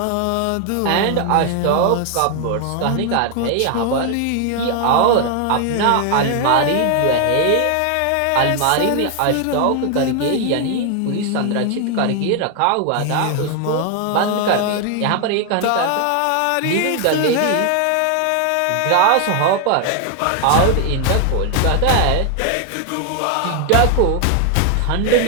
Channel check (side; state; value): both; different; correlation 0.00